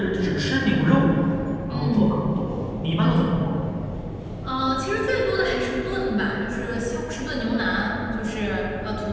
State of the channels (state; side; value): identical; both; correlation 1.00